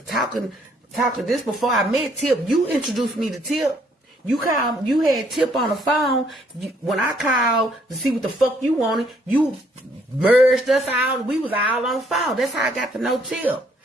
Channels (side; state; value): both; normal; correlation 0.67